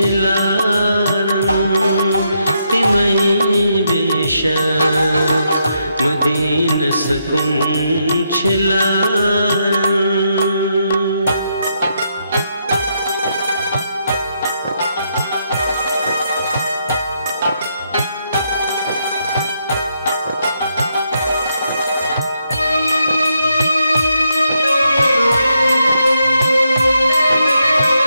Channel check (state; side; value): inverted; both; correlation -0.79